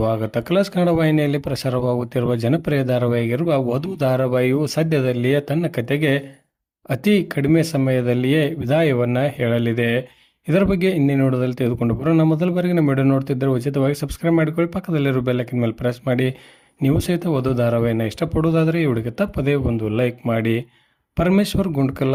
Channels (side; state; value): both; identical; correlation 1.00